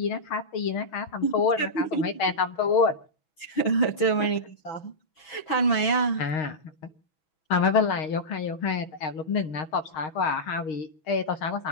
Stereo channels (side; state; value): right; late; 6.1 ms